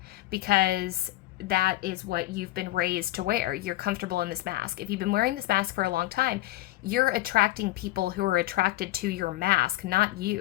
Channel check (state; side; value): quieter; right; 17.0 dB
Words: because that is what you've been raised to wear, you're comfortable in this mask. If you've been wearing this mask for a long time, you're attracting people who are attracted to your mask, not